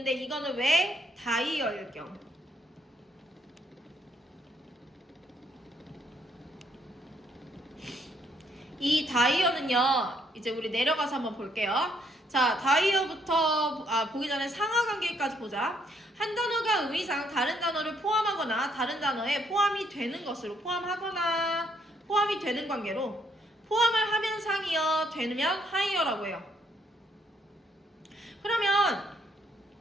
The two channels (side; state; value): both; normal; correlation 0.71